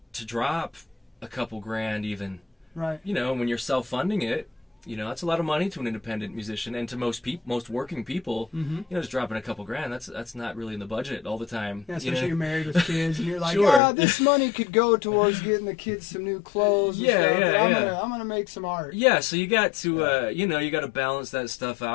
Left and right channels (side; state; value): right; drops out; at 13.8 s